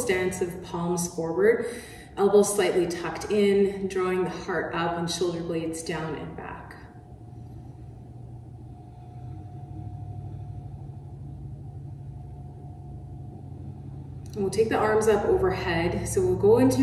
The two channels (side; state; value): both; identical; correlation 1.00